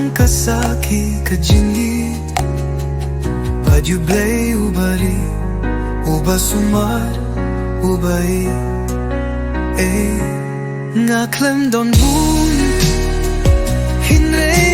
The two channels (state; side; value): identical; both; correlation 1.00